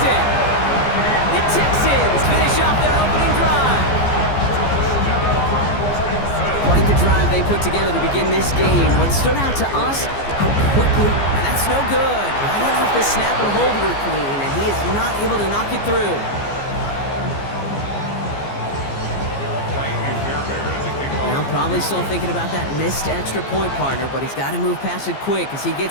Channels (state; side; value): late; right; 15 ms